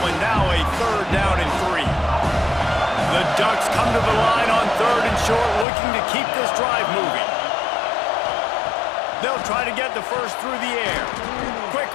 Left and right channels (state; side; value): drops out; right; at 5.7 s